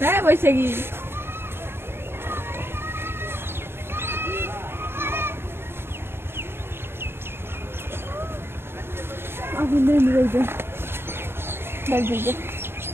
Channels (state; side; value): late; left; 0.11 ms